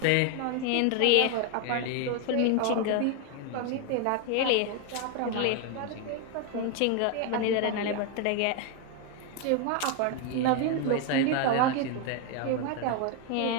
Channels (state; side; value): different; both; correlation 0.01